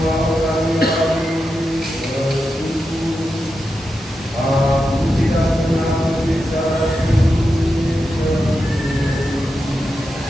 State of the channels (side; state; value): both; normal; correlation 0.88